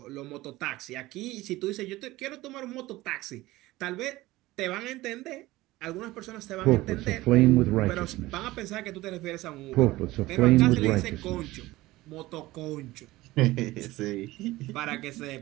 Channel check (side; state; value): left; quieter; 18.4 dB